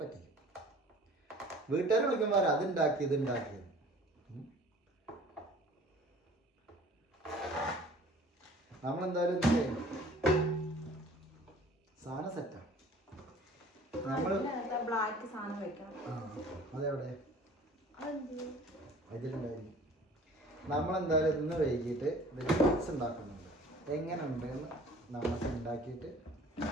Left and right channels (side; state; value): both; normal; correlation 0.48